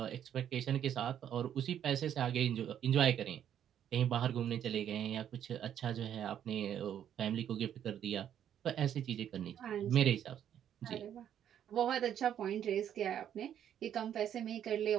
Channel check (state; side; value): quieter; left; 9.9 dB